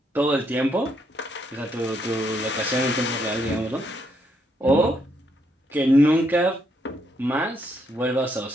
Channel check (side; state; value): both; normal; correlation 0.75